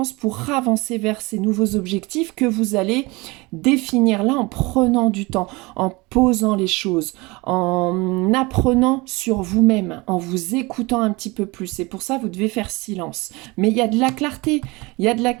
pour avancer vers ces nouveaux objectifs que vous allez définir là en prenant du temps, en posant les choses, en apprenant sur vous-même, en vous écoutant un petit peu plus. Et pour ça, vous devez faire silence. Mais il y a de la clarté. Il y a de la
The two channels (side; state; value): left; quieter; 24.3 dB